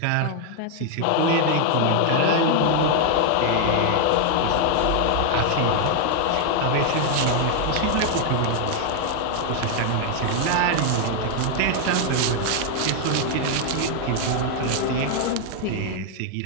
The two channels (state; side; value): different; both; correlation 0.00